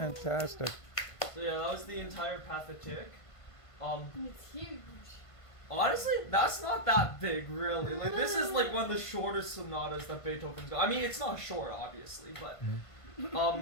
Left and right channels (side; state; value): right; late; 1.5 ms